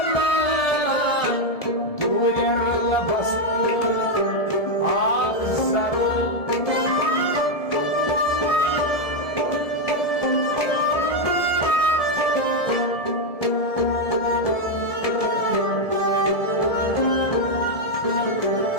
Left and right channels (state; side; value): late; right; 1.7 ms